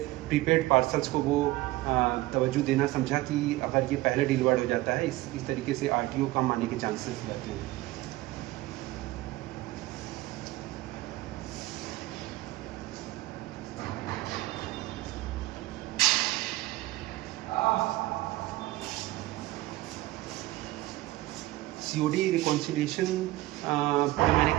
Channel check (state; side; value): quieter; left; 18.2 dB